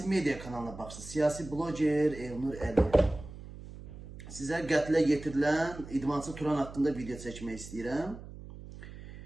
medya kanalına baxsınız. Siyasi bloger Elnur Əliyev. Sizə qətlə yetirilən idmançı Turan haqqında video çəkmək istəyirəm.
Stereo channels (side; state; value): right; noise; hum, 14 dB below the sound